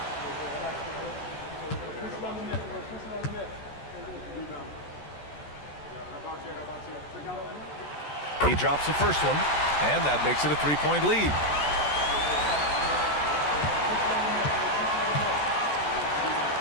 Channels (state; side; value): late; right; 14 ms